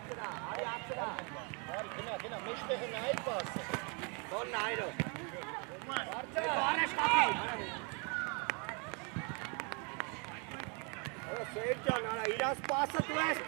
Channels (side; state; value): left; quieter; 34.5 dB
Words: Գնա, մեջտեղը նայր պասը։ Դոն նայրո։ Առաջ կապի։ Սեյր ջան, արա, իրաս պասը դու ես